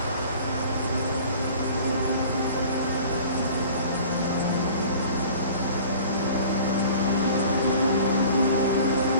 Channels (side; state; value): both; inverted; correlation -0.46